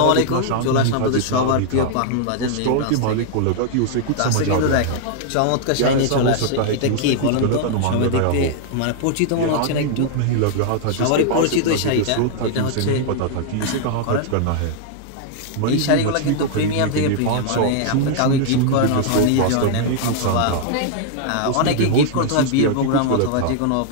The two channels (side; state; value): both; different; correlation -0.01